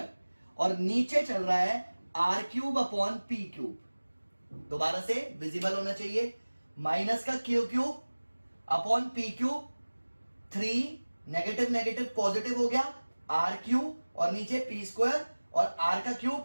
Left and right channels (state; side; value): inverted; both; correlation -1.00